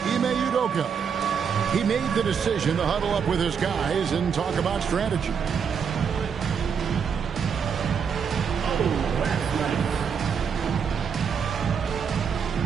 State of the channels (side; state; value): left; quieter; 6.8 dB